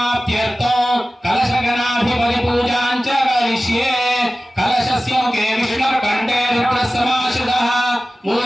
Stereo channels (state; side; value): normal; both; correlation 0.96